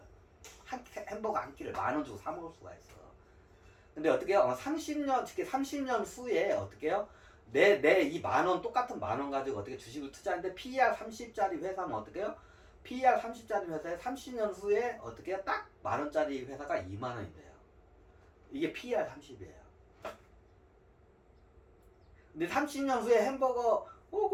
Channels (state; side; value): identical; both; correlation 1.00